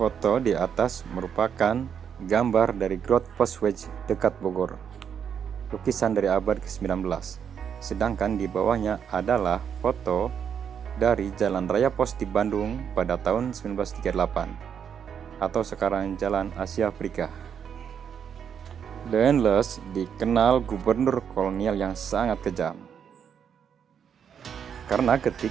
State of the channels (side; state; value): left; quieter; 7.8 dB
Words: di atas merupakan gambar dari Groot Postweg dekat Bogor, lukisan dari abad ke-19. Sedangkan di bawahnya adalah foto dari Jalan Raya Pos di Bandung pada tahun 1938 atau sekarang Jalan Asia Afrika. Daendels dikenal gubernur kolonial yang sangat kejam. Karena